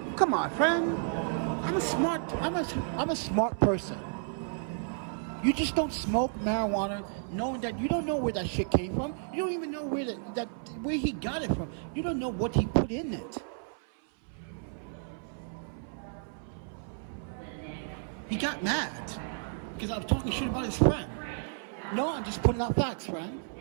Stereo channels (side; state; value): left; silent; 57 dB below the other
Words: Come on, friend. I'm a smart person. You just don't smoke marijuana knowing that you don't know where that shit came from. You don't even know where he got it from. You don't know what he put in it. He got mad because I was talking shit about his friend. No, I'm just putting out facts, friend.